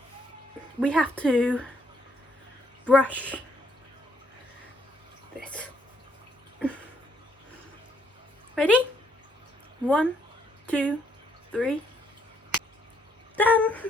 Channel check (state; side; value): normal; both; correlation 0.70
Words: we have to brush this. Ready? 1, 2, 3. Done.